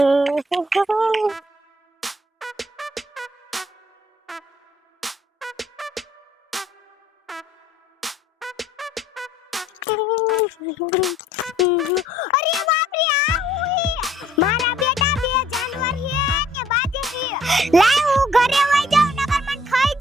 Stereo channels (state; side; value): normal; both; correlation 0.61